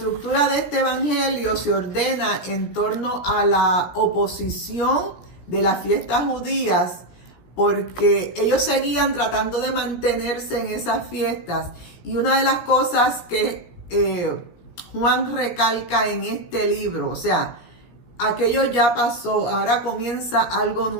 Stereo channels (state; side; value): late; right; 17 ms